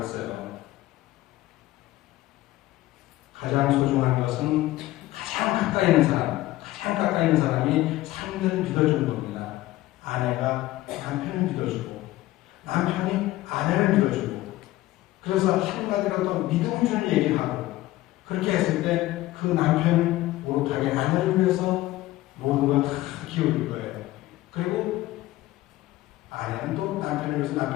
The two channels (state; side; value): quieter; right; 16.8 dB